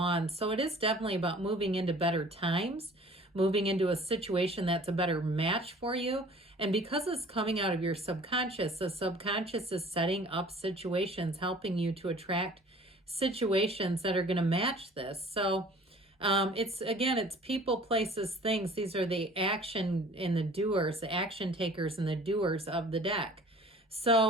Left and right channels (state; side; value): normal; both; correlation 0.49